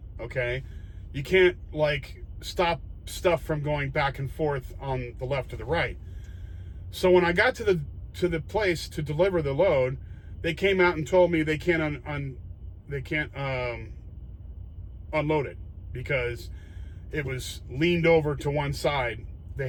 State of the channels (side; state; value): both; identical; correlation 1.00